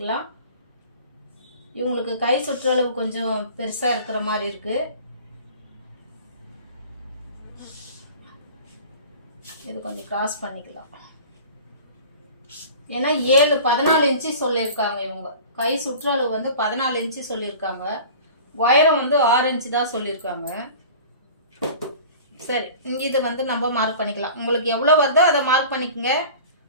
இவங்களுக்கு கை சுற்றளவு கொஞ்சம் பெருசாக இருக்கிற மாதிரி இருக்குது. இது கொஞ்சம் கிராஸ் பண்ணிக்கலாம். ஏன்னா 14 இன்ச்சு சொல்லியிருக்காங்க. இவங்க கை சுற்றளவு வந்து 14 இன்ச்சு சொல்லியிருக்காங்க. உயரம் வந்து 6 இன்ச்சு தான் சொல்லியிருக்காங்க. சரி, இங்கே இதை வந்து நம்ம மார்க் பண்ணிக்கலாம். உங்களுக்கு எவ்வளோ வருதோ அதை மார்க் பண்ணிக்கோங்க.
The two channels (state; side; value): inverted; both; correlation -0.42